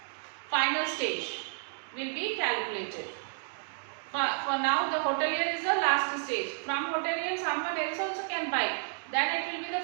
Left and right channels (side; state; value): left; silent; digital silence